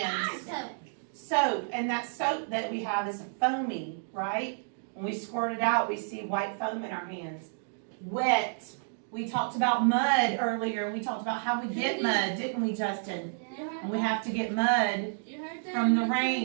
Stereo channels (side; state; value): left; silent; digital silence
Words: So, Soap, and that soap that we have is foamy, right? When we squirt it out, we see white foam in our hands. Wet. We talked about mud earlier. We talked about how we get mud, didn't we, Justin? And we have to get mud from the